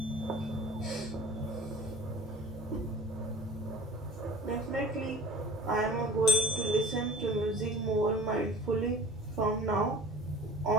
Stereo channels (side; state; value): both; normal; correlation 0.43